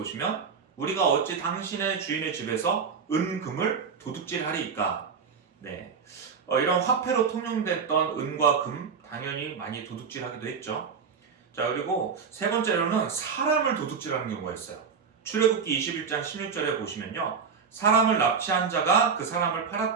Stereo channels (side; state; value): left; quieter; 6.0 dB